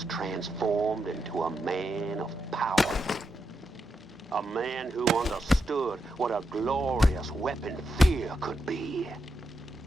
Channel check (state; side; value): normal; both; correlation 0.85